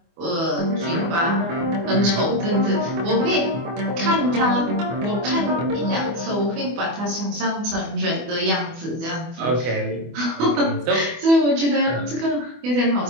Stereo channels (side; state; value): left; late; 24 ms